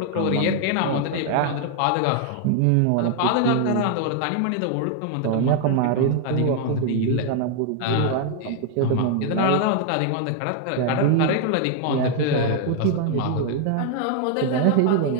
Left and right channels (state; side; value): different; both; correlation 0.00